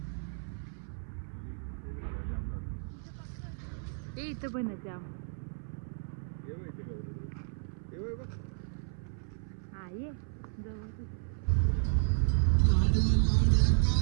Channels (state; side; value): silent; left; 56 dB below the other